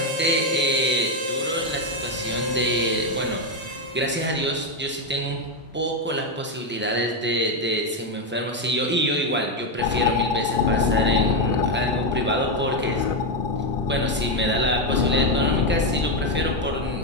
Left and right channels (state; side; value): normal; both; correlation 0.06